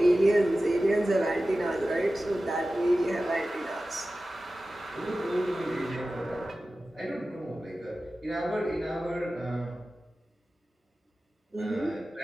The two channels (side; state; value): both; normal; correlation 0.95